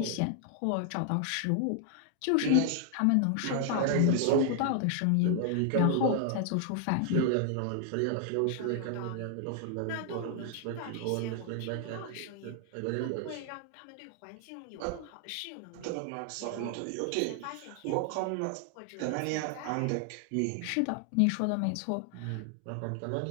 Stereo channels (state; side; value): different; both; correlation 0.00